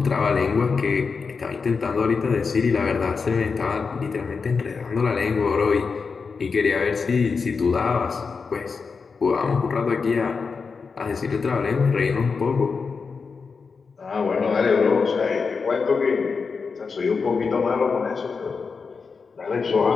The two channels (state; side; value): quieter; right; 5.0 dB